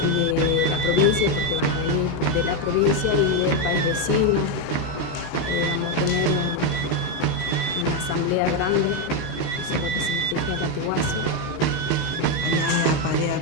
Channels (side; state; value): right; late; 13 ms